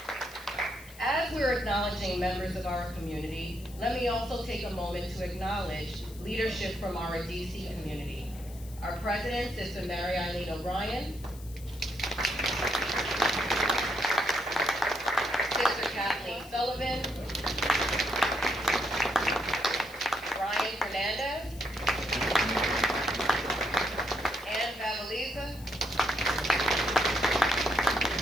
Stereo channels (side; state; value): left; noise; hiss, 20 dB below the sound